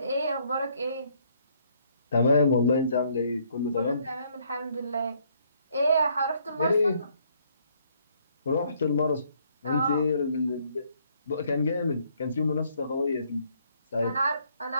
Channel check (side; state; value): both; inverted; correlation -0.67